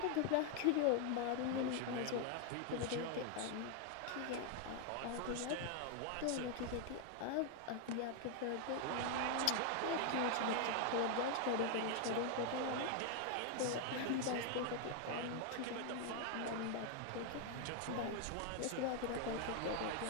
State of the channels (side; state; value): both; different; correlation 0.01